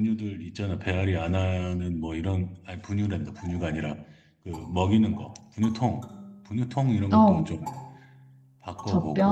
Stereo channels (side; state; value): both; identical; correlation 1.00